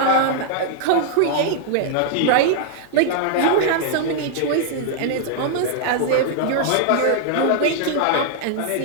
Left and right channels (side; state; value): both; different; correlation -0.01